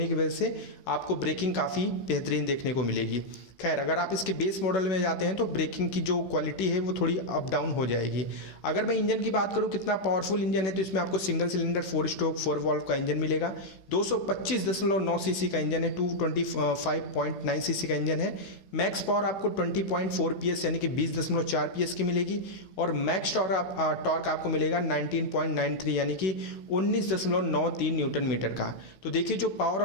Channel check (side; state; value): right; late; 16 ms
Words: की वजह से आपको ब्रेकिंग काफ़ी बेहतरीन देखने को मिलेगी। खैर अगर आप इसके बेस मॉडल में जाते हैं तो ब्रेकिंग की जो क्वालिटी है वो थोड़ी अप डाउन हो जाएगी। अगर मैं इंजन की बात करूं कितना पावरफुल इंजन है, तो इसमें आपको सिंगल सिलेंडर 4 स्ट्रोक 4 वॉल्व का इंजन मिलेगा। 225.9 सीसी का इंजन है, 225.9 सीसी का इंजन है। मैक्स पावर आपको 20.4 PS यानी कि 20.4 PS की मिलेगी और मैक्स टॉर्क आपको मिलेगा 19.93 यानी कि 19.93 न्यूटन मीटर का। तो देखिए जो पावर